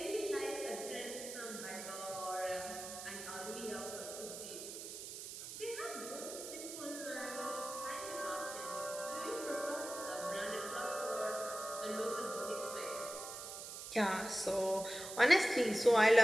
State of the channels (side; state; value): right; noise; hiss, 9 dB below the sound